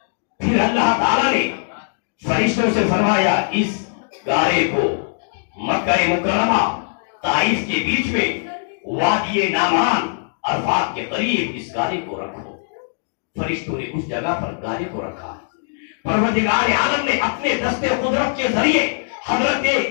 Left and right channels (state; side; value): silent; right; digital silence